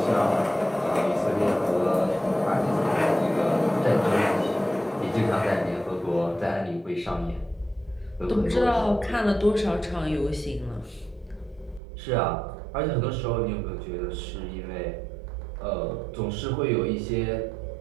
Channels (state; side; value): drops out; left; at 11.8 s